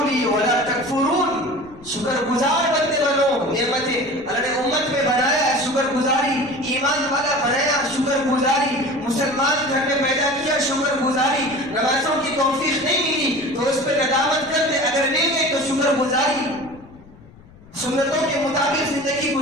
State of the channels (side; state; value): left; noise; rumble, 23 dB below the sound